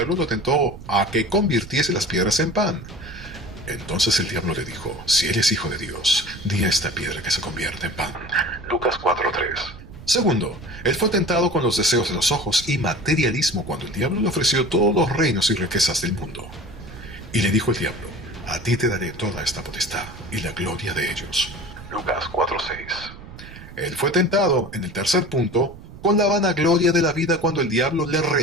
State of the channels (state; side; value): noise; right; rumble, 16 dB below the sound